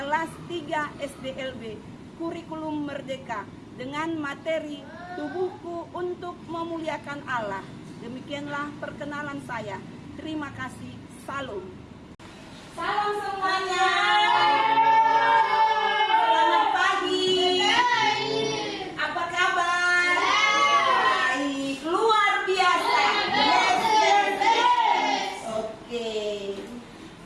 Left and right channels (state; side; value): identical; both; correlation 1.00